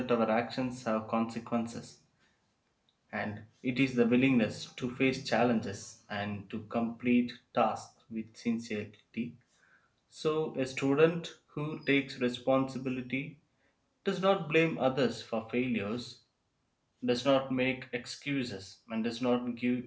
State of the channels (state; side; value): identical; both; correlation 1.00